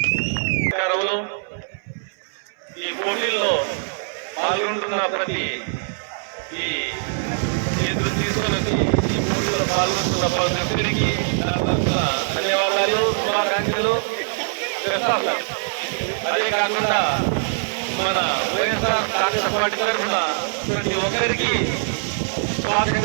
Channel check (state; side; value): silent; left; 58 dB below the other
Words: ఈ పోటీల్లో పాల్గొంటున్న ప్రతి ఈ ఎదురు తీసుకుని ఈ పోటీలో పాల్గొంటున్న ప్రతి ఒక్కరికి ధన్యవాదాలు, శుభాకాంక్షలు. అదే కాకుండా మన వైఎస్ఆర్ కాంగ్రెస్ పార్టీ తరఫున ప్రతి ఒక్కరికి